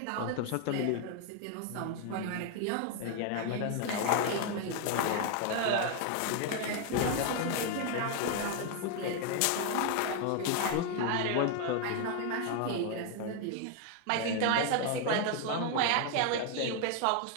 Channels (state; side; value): different; both; correlation 0.00